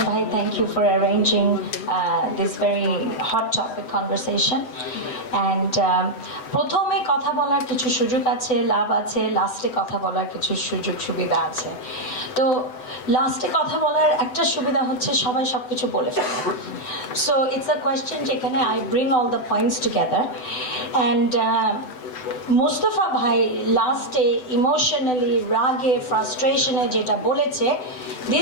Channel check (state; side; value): late; right; 7.9 ms